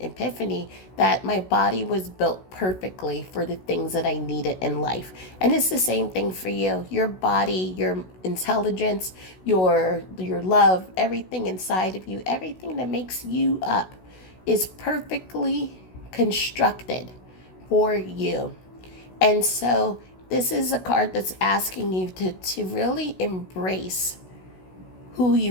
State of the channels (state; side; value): late; right; 16 ms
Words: epiphany that my body was built perfectly for the things that I needed in life. And it's the same thing for you. Your body, your intelligence, your love, everything inside of you, everything that makes you up is perfectly constructed for you. And so this is a card that's asking you to really embrace who